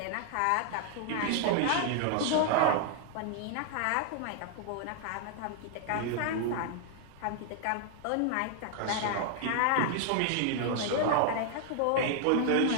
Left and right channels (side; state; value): both; different; correlation 0.00